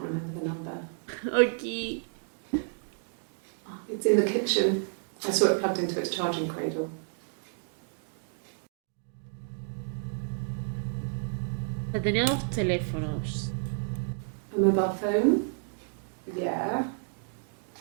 remember the number. Aquí. Oh, it's in the kitchen. I saw it plugged into its charging cradle. Tenía dos teléfonos. A mobile phone? Yeah.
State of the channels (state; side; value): silent; left; digital silence